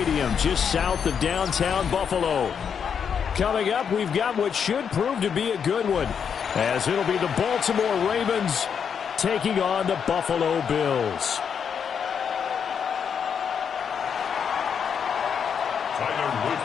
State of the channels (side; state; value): right; quieter; 7.2 dB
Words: just south of downtown Buffalo. Coming up, we've got what should prove to be a good one, as it'll be the Baltimore Ravens taking on the Buffalo Bills. Tyler Luke